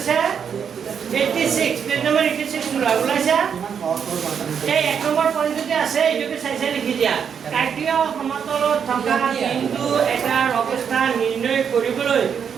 86 পেজ নম্বৰ 86 ওলাইছা এই এক নম্বৰ পইণ্টতে আছে এইটোকে চাই লিখি দিয়া কাৰ্টেসীয় সমতলত থকা বিন্দু এটাৰ অৱস্থা নিৰ্ণয় কৰিবলৈ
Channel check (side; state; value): left; quieter; 7.4 dB